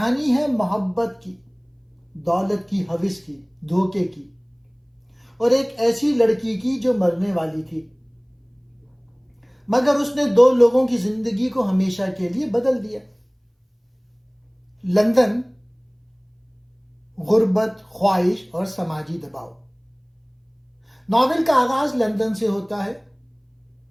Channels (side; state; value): both; identical; correlation 1.00